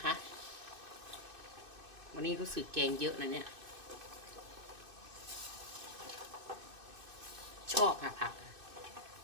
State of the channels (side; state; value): left; late; 2.6 ms